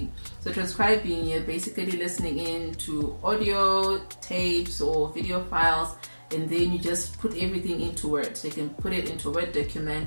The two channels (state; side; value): inverted; both; correlation -1.00